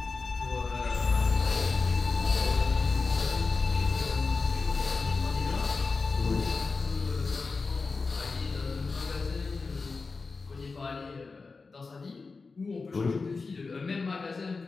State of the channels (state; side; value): quieter; right; 4.2 dB